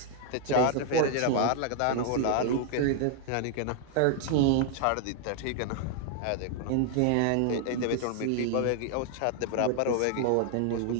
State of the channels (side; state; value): both; different; correlation 0.00